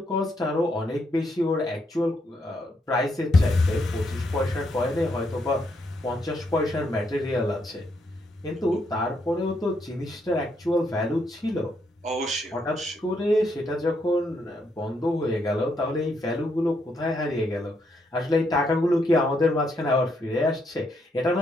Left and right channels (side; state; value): both; normal; correlation 0.76